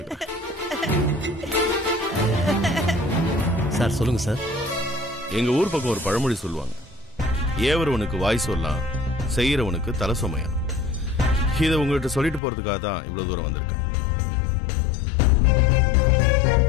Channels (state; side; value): drops out; right; at 12.4 s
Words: சார் சொல்லுங்க சார். எங்க ஊர் பக்கம் ஒரு பழமொழி சொல்லுவாங்க, ஏவரவனுக்கு வாய் சொல்லலாம், செய்யறவனுக்கு தலை சுமையா. இதை உங்ககிட்ட சொல்லிட்டு போறதுக்காக தான் இவ்வளவு தூரம் வந்திருக்கேன்.